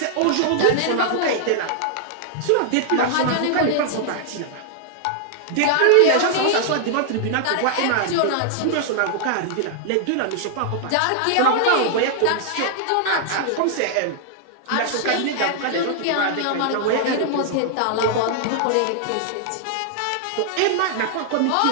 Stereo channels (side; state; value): both; different; correlation -0.01